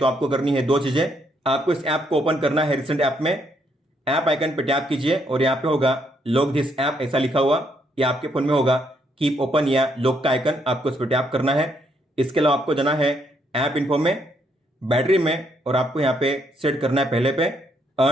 आपको करनी है 2 चीजें। आपको इस ऐप को ओपन करना है रिसेंट ऐप में, ऐप आइकन पे टैप कीजिए और यहाँ पे होगा लॉक दिस ऐप ऐसा लिखा हुआ, या आपके फोन में होगा कीप ओपन या लॉक का आइकन, आपको इस पर टैप करना है। इसके अलावा आपको जाना है ऐप इन्फो में, बैटरी में, और आपको यहाँ पे सेट करना है पहले पे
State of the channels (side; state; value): both; normal; correlation 0.73